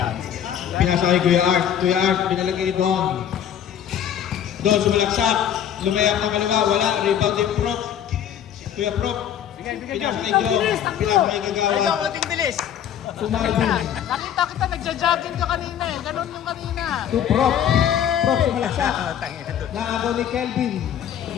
Pinasa kay Kuya Art. Kuya Art, pinalagay ni Don. Don, sumalaksak. Lumayap ng kaliwa. Wala. Rebound din Prop. Kuya Prop. Pinasa kay Jong. Pinasa kay Gagawa. Ating bilis. Sumarbi. Nakita kita, nagja-jogging ka kanina eh. Ganon yung kanina. To Prop. Prop sumalaksak. Naagaw ni Kelvin.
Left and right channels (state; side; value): quieter; right; 9.7 dB